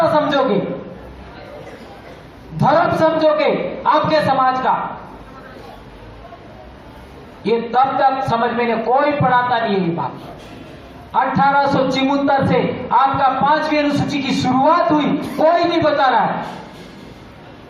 समझोगे, धर्म समझोगे आपके समाज का। ये तब तक समझ में कोई पढ़ाता नहीं है ये बात। 1874 से आपका 5वीं अनुसूची की शुरुआत हुई, कोई नहीं बता रहा है,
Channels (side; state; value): both; identical; correlation 1.00